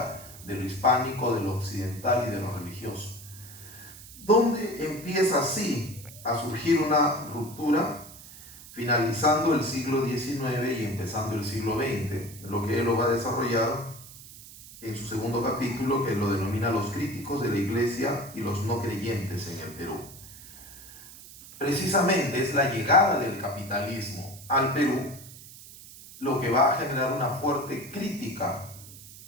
de lo hispánico, de lo occidental y de lo religioso. ¿Dónde empieza así a surgir una ruptura? Finalizando el siglo XIX y empezando el siglo XX. Lo que él lo va a desarrollar en su segundo capítulo, que lo denomina Los críticos de la Iglesia y los no creyentes en el Perú. Precisamente es la llegada del capitalismo al Perú lo que va a generar una fuerte crítica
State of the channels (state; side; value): noise; right; hiss, 17 dB below the sound